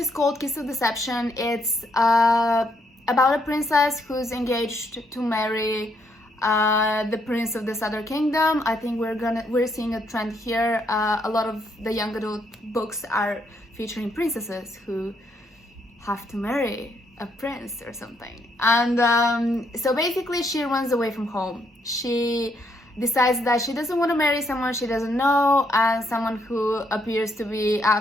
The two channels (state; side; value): normal; both; correlation 0.74